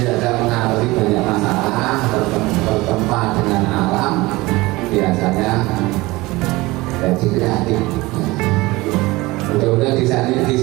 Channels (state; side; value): quieter; left; 21.0 dB